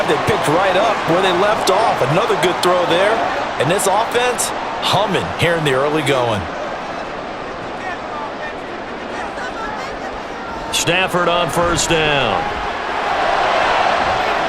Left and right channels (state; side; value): identical; both; correlation 1.00